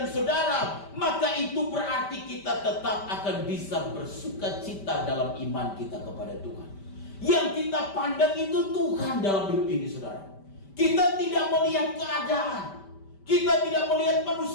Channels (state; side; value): late; right; 5.1 ms